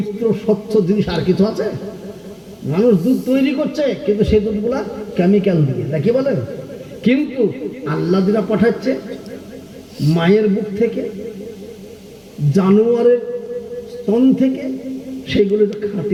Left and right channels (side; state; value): both; identical; correlation 1.00